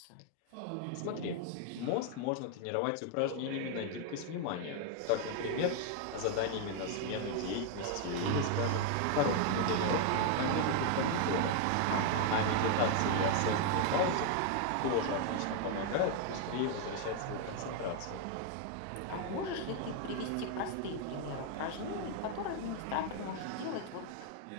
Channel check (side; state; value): both; different; correlation 0.00